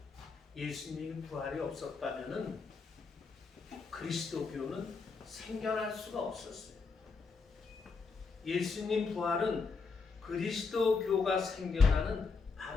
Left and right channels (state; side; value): quieter; right; 4.7 dB